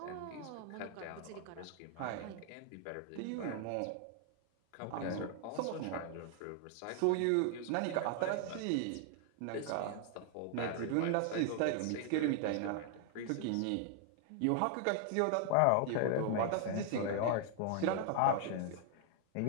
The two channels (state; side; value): different; both; correlation 0.00